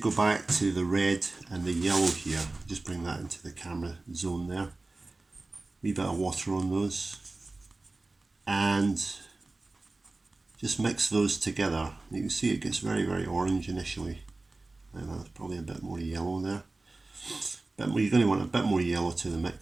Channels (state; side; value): quieter; left; 3.2 dB